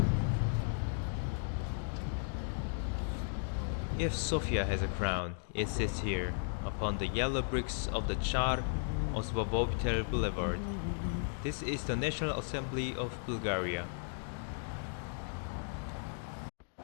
If Sofia has a crown, it sits here, upon the yellow bricks of the Char Osvobovitel Boulevard. This is the National Assembly of Bulgaria.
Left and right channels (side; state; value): right; silent; digital silence